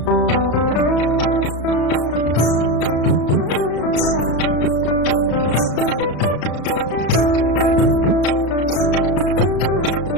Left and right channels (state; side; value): late; right; 34 ms